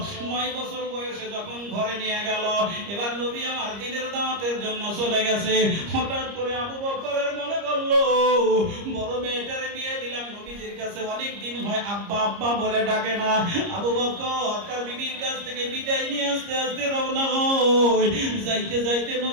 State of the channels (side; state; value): left; late; 30 ms